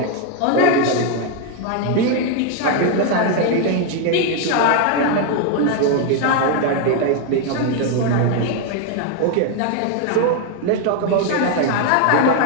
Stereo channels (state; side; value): different; both; correlation 0.01